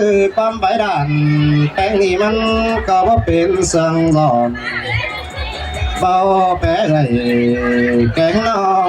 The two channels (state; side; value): identical; both; correlation 1.00